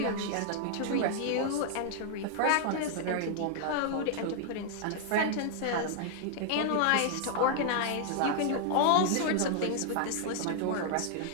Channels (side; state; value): both; different; correlation 0.00